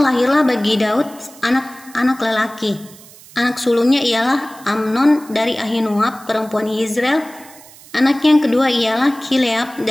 bagi Daud anak-anak lelaki. Anak sulungnya ialah Amnon dari Ahinoam perempuan Yizreel. Anak yang kedua ialah Kileab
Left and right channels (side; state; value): right; noise; hiss, 22 dB below the sound